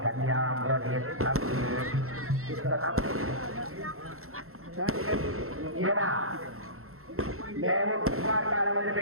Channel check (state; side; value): late; left; 0.63 ms